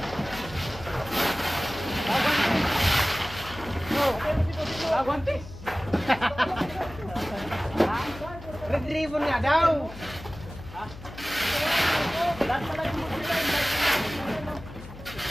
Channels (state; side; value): noise; left; hum, 15 dB below the sound